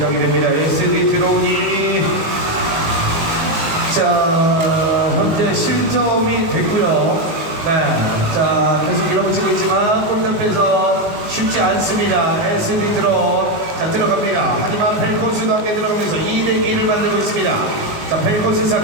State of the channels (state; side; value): late; left; 19 ms